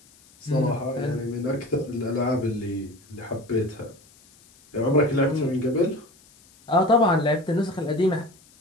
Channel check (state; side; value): noise; left; hiss, 28 dB below the sound